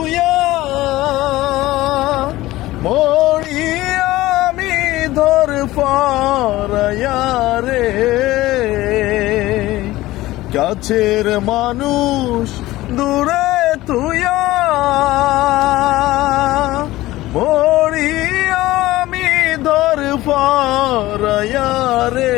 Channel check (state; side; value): quieter; right; 17.3 dB